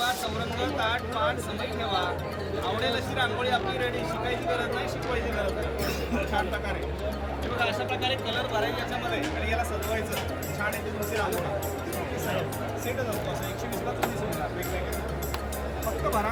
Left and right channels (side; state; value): both; identical; correlation 1.00